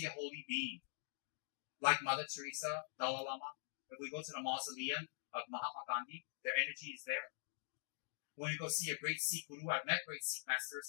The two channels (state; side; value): silent; right; digital silence